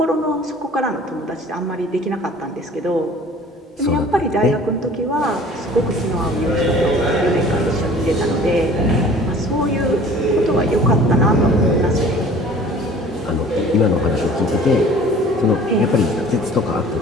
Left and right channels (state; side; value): normal; both; correlation 0.48